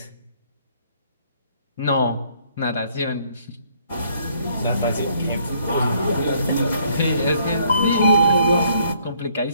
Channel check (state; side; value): inverted; both; correlation -0.65